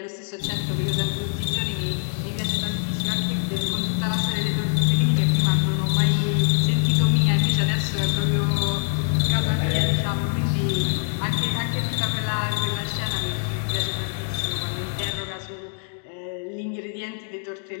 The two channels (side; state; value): right; silent; digital silence